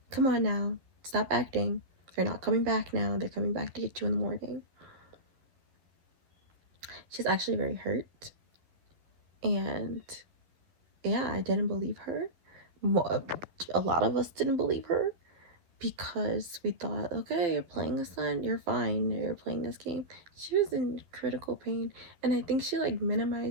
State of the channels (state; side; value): late; left; 12 ms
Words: come on now, stop acting. They're not coming back now. They're coming back to get you in the morning. She's actually very hurt. And yeah, I didn't believe her. A lot of us didn't believe her because we thought, okay, you're playing a son, you're fine, you're playing this game. She was in critical pain, and I think she like